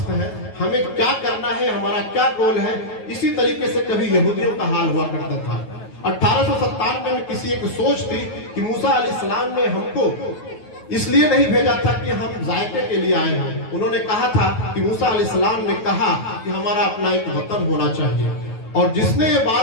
है, हमें क्या करना है, हमारा क्या गोल है, इसी तरीके से कभी यहूदियों का हाल हुआ करता था। 1897 में किसी एक सोच थी कि मूसा अलैहिस्सलाम ने हमको इसलिए नहीं भेजा था कि हम जायके के लिए आए हैं। उन्होंने कहा था कि मूसा अलैहिस्सलाम ने कहा कि हमारा अपना एक वतन होना चाहिए। और जिसने ये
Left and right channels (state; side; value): late; right; 9.3 ms